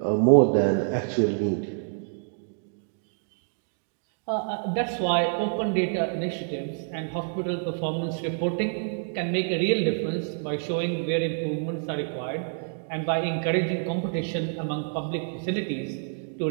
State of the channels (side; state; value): left; silent; 60 dB below the other